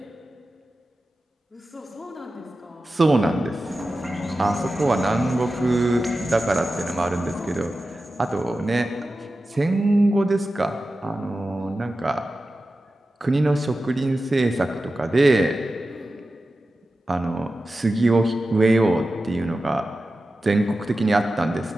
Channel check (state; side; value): normal; both; correlation 0.93